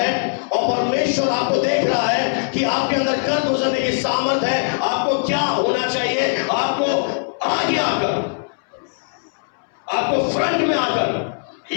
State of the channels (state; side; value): silent; right; 65 dB below the other